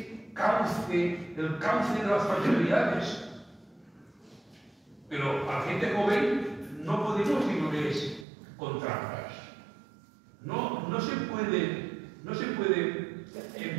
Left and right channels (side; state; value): left; drops out; at 8.2 s